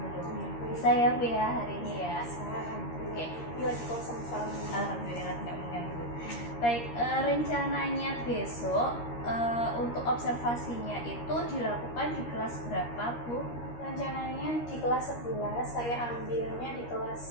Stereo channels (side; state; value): right; late; 13 ms